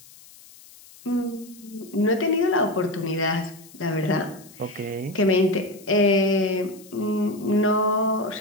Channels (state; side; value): noise; left; hiss, 22 dB below the sound